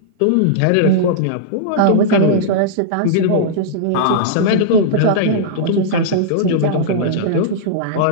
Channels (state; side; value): different; both; correlation -0.02